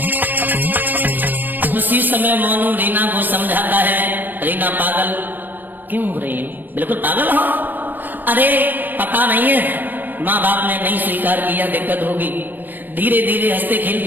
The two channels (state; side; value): late; left; 0.088 ms